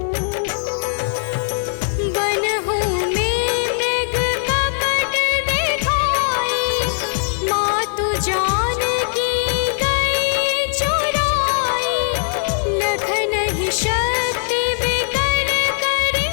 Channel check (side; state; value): right; silent; 66 dB below the other